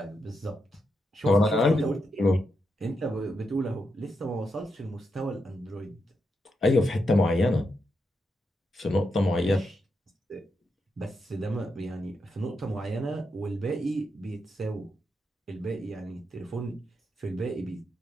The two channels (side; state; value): both; normal; correlation 0.84